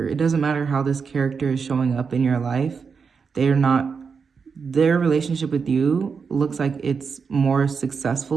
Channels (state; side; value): quieter; left; 5.6 dB